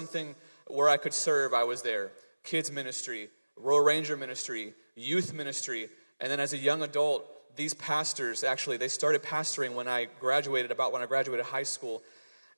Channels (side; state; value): both; inverted; correlation -1.00